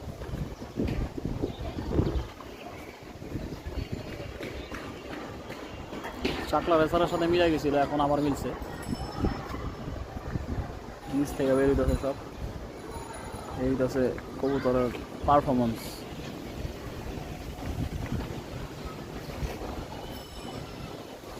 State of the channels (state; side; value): identical; both; correlation 1.00